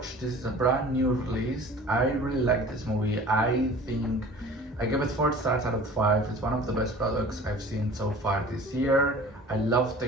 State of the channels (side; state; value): both; normal; correlation 0.44